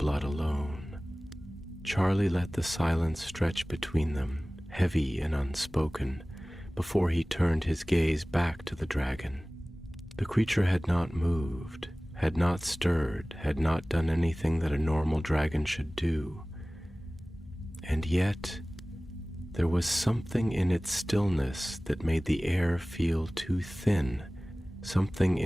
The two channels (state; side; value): normal; both; correlation 0.98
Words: alone." Charlie let the silence stretch between them, heavy and unspoken, before he turned his gaze back to the dragon. The creature had not moved, had not stirred, had not done anything that a normal dragon should do. And yet, there was something in its stillness that made the air feel too thin, something